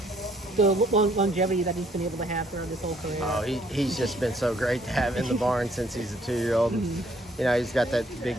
longevity that he's been able to have throughout his whole career. Oh, he's just been so great to have in the barn since he's a 2-year-old. He's got that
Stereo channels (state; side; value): normal; both; correlation 0.64